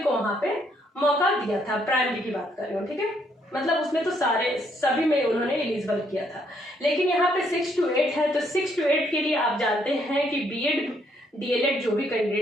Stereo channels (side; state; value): both; normal; correlation 0.71